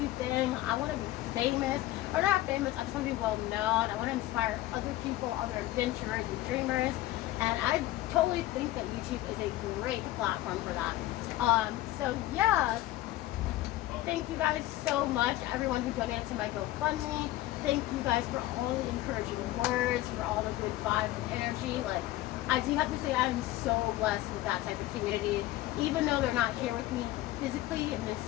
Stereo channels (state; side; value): quieter; right; 16.1 dB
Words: thing. I want to be famous, or not famous, I just want to be well known. I want to inspire other people, other adventurers and dreamers, and I totally think that YouTube is a great platform for that. So yeah, thank you guys so much, everyone who donated to my GoFundMe. Thank you guys for all the encouraging words, for all the good vibes and energy. Like, I do have to say I am so blessed with that type of community. Even though they're not here with me physically in this